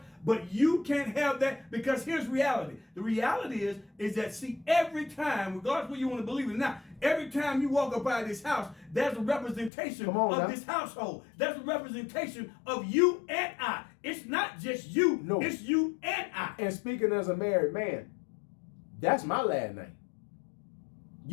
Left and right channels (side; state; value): right; drops out; at 9.7 s